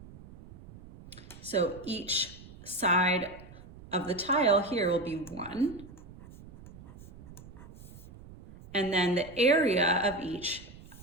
So each side of the tile here will be 1. And then the area of each,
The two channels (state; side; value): noise; right; rumble, 18 dB below the sound